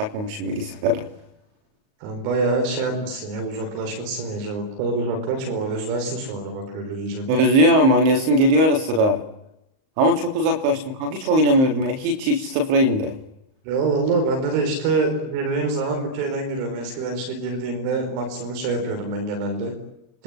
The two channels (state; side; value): late; left; 38 ms